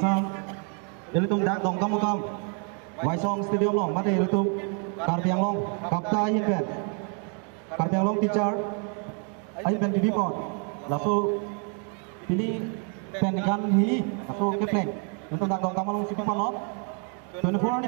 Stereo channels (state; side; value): quieter; left; 39.6 dB